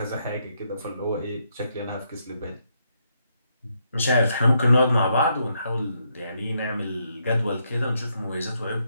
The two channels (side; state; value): both; inverted; correlation -0.77